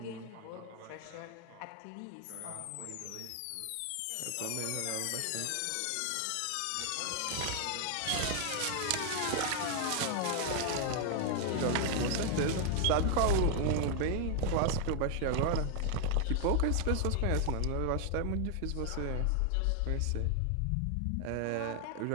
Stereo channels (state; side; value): different; both; correlation 0.00